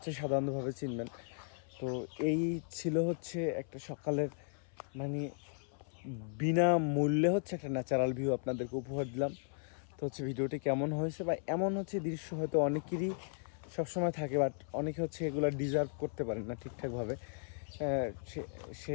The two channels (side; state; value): right; silent; 54 dB below the other